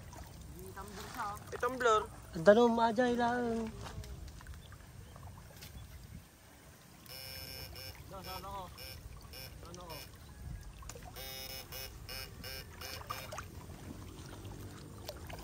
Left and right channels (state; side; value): identical; both; correlation 1.00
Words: Tumbler. Ang tanong maajay lang. Ano ko?